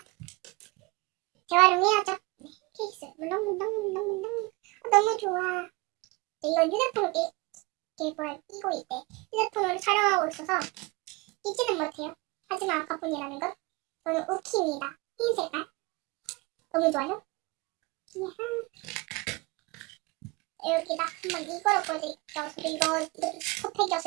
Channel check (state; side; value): quieter; left; 25.5 dB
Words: 재활용해야죠. 네, 케이스 너무 좋아. 네, 이건 휴대폰을 끼고 있대. 휴대폰으로 촬영하고 있어서 끼지는 못해요. 하지만 아카폰이라는 건 저는 우키입니다. 흰 색깔 너무 좋아요. 여기다 한번 이거로 보여드릴게요. 저도 이것도